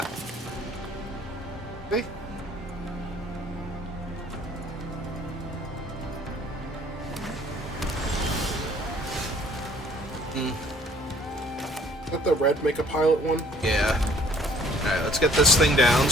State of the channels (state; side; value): normal; both; correlation 0.58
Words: Okay. Let the red make a pilot one? Yeah. Alright, let's get this thing down